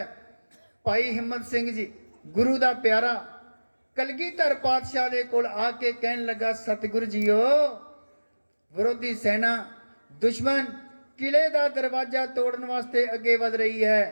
ਭਾਈ ਹਿੰਮਤ ਸਿੰਘ ਜੀ ਗੁਰੂ ਦਾ ਪਿਆਰਾ ਕਲਗੀਧਰ ਪਾਤਸ਼ਾਹ ਦੇ ਕੋਲ ਆ ਕੇ ਕਹਿਣ ਲੱਗਾ, ਸਤਿਗੁਰੂ ਜੀਓ, ਵਿਰੋਧੀ ਸੈਨਾ ਦੁਸ਼ਮਣ ਕਿਲੇ ਦਾ ਦਰਵਾਜ਼ਾ ਤੋੜਨ ਵਾਸਤੇ ਅੱਗੇ ਵਧ ਰਹੀ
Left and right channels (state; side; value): inverted; both; correlation -1.00